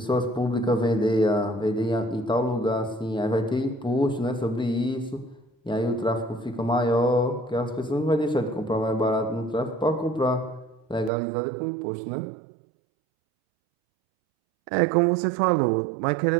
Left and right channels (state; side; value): drops out; left; at 11.1 s